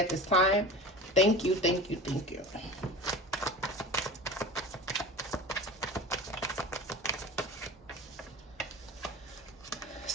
this time? Thank you, thank you, thank you.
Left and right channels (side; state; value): both; normal; correlation 0.34